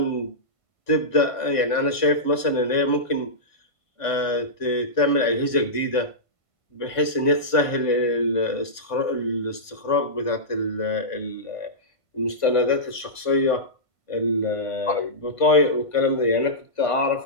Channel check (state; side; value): late; right; 1.5 ms